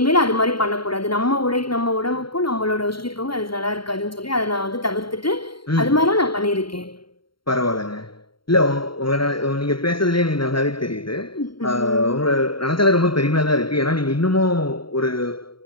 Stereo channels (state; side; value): late; right; 0.73 ms